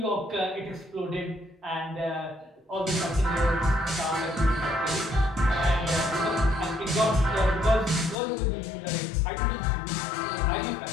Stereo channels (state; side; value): drops out; right; at 8.2 s